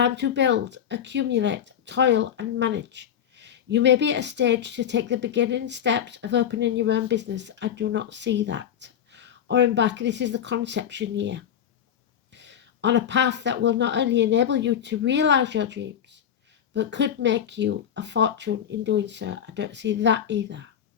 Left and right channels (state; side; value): quieter; right; 9.2 dB